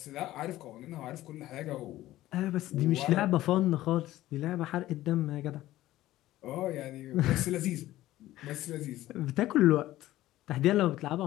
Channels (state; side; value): quieter; right; 15.4 dB